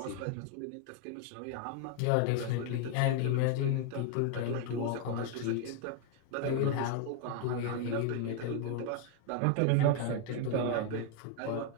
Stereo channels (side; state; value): both; different; correlation 0.00